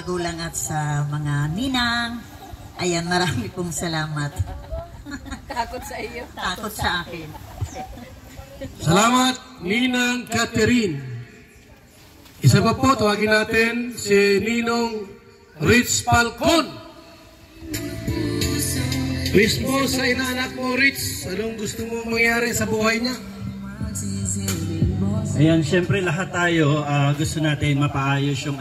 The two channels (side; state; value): both; identical; correlation 1.00